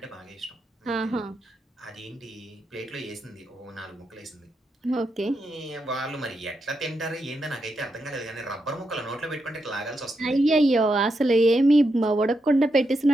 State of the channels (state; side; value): normal; both; correlation 0.84